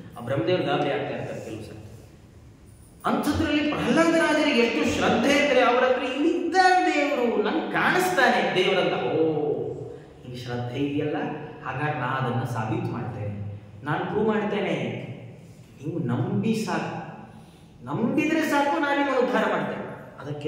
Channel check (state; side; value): identical; both; correlation 1.00